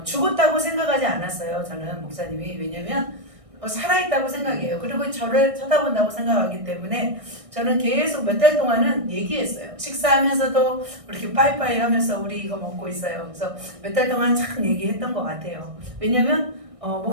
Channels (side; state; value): left; late; 1.6 ms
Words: 죽었다고 생각하지 않았어요. 저는 목사님이. 왜냐면 살아있다고 생각해요. 그리고 저를 쳐다본다고 생각하기 때문에 저는 계속 몇 달 동안은 얘기했어요. 식사하면서도 이렇게 빠이빠이 하면서 우리 이거 먹고 있어요. 그래서 몇 달 동안 참 얘기했던 것 같아요. 왜냐면